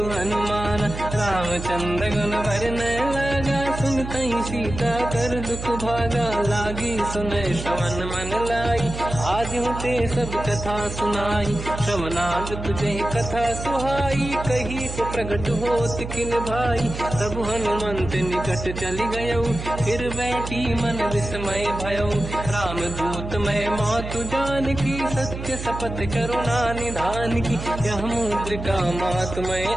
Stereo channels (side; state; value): right; noise; hum, 8 dB below the sound